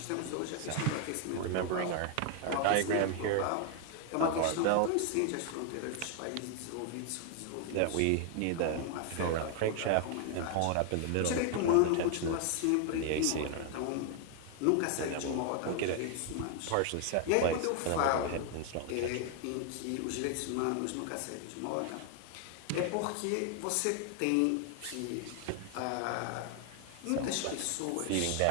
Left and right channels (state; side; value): different; both; correlation 0.00